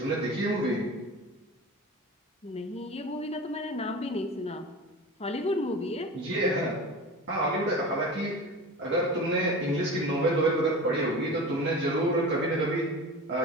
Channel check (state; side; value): normal; both; correlation 0.33